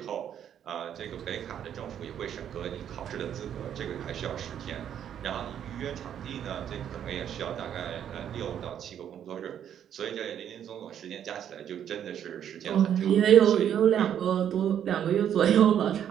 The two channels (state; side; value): quieter; left; 9.5 dB